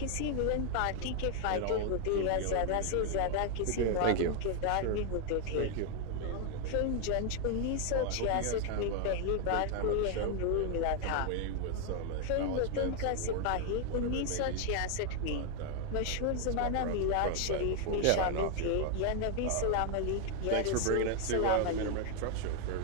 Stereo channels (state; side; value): different; both; correlation 0.00